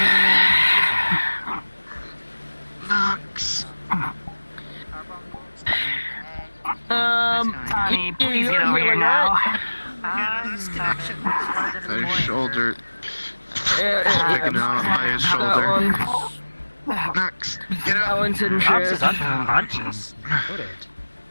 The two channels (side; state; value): both; inverted; correlation -1.00